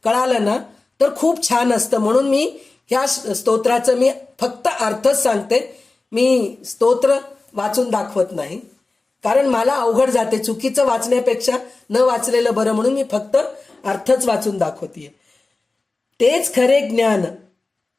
कळाला ना तर खूप छान असतं. म्हणून मी ह्या स्तोत्राचं मी फक्त अर्थच सांगते, मी स्तोत्र वाचून दाखवत नाही, कारण मला अवघड जाते. चुकीचं वाचण्यापेक्षा न वाचलेलं बरं, म्हणून मी फक्त अर्थच वाचून दाखवतीये. तेच खरे ज्ञान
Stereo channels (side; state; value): right; quieter; 3.4 dB